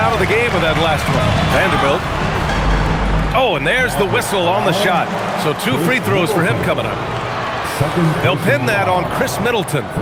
of the game with that last one. Vanderbilt. Oh, and there's the whistle on the shot. So 2 free throws for him coming up. They'll pin that on Chris Middleton.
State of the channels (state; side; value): identical; both; correlation 1.00